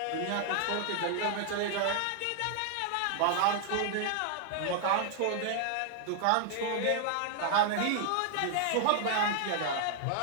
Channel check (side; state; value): both; different; correlation 0.00